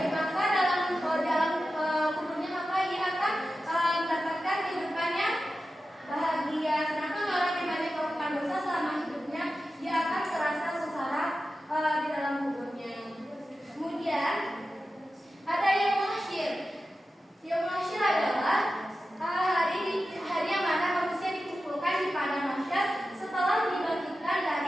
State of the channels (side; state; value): both; normal; correlation 0.93